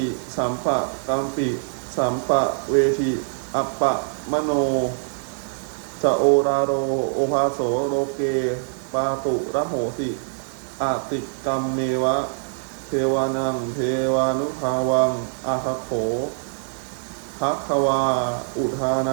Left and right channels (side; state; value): left; silent; digital silence